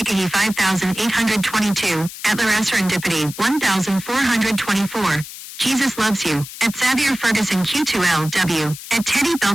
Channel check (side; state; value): left; noise; hiss, 13 dB below the sound